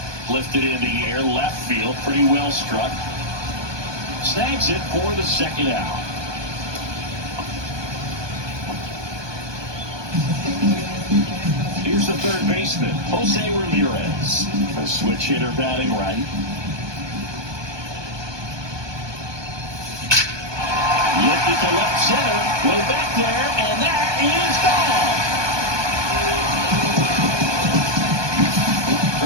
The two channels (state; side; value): late; left; 1.2 ms